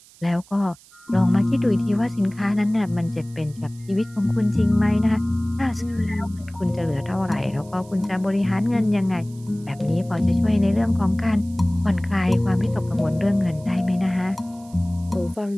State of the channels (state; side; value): noise; right; hiss, 25 dB below the sound